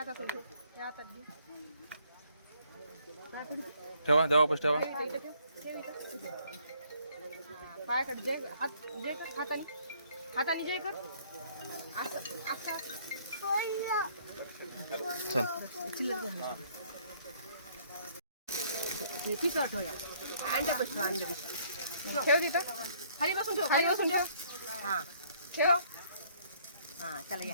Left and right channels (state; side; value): inverted; both; correlation -0.63